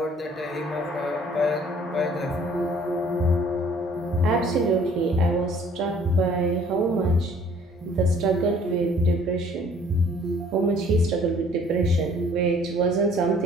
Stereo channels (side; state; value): both; normal; correlation 0.56